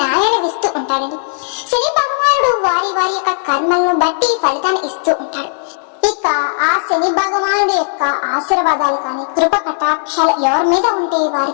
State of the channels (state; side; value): silent; right; digital silence